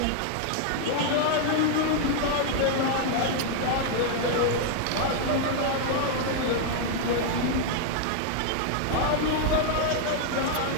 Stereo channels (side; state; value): both; different; correlation 0.00